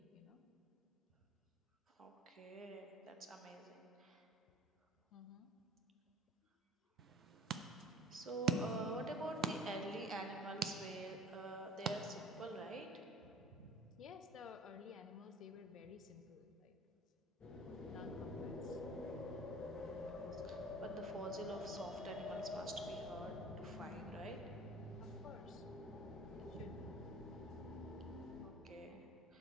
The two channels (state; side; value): normal; both; correlation 0.45